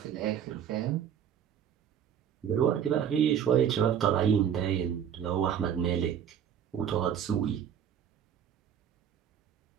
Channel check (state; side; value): quieter; left; 8.8 dB